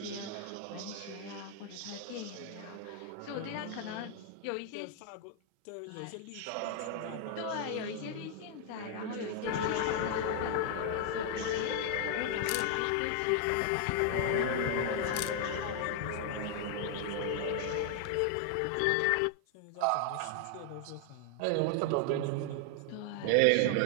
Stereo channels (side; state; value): both; different; correlation 0.00